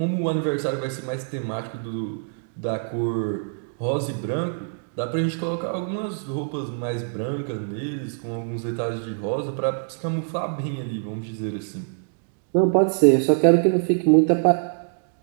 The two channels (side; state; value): left; silent; digital silence